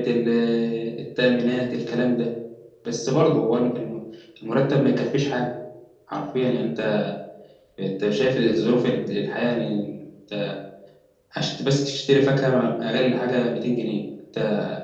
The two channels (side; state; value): both; identical; correlation 1.00